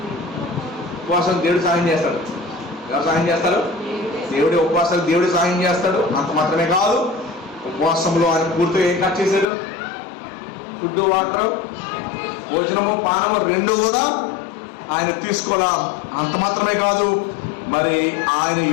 ఉపవాసం దేవుడు సహాయం చేస్తాడు. ఎవరు సహాయం చేస్తారు? దేవుడి ఉపవాసాలు దేవుడు సహాయం చేస్తాడు. అంత మాత్రమే కాదు, ఉపవాసంలో ఆయన పూర్తిగా ఏం కట్ చేశాడు? ఫుడ్ వాటర్ భోజనము పానము రెండు కూడా ఆయన తీసుకోవాలా. అంత మాత్రమే కాదు, మరి ఆయన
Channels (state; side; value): drops out; right; at 9.5 s